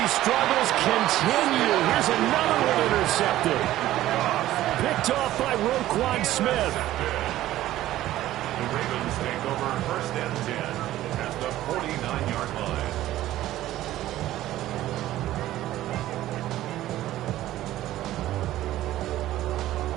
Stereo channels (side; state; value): left; quieter; 14.4 dB